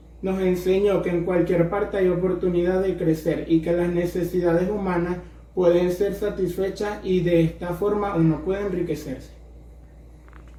nos enseñó que en cualquier parte hay oportunidad de crecer y que las necesidades humanas pueden ser satisfechas y de esta forma uno puede enriquecerse.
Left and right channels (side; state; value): both; identical; correlation 1.00